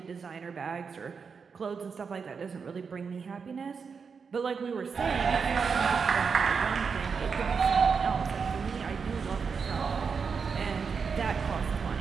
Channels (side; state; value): left; quieter; 5.7 dB